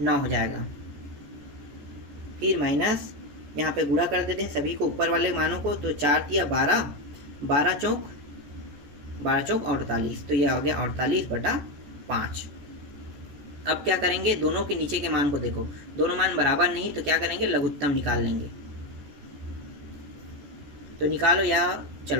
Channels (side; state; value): left; late; 14 ms